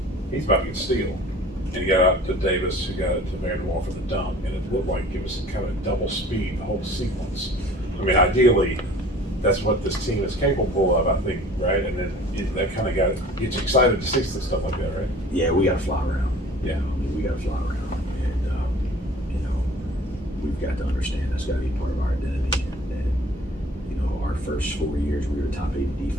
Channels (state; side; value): normal; both; correlation 0.47